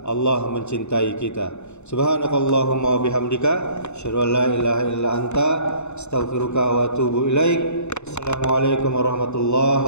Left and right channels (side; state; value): right; late; 0.82 ms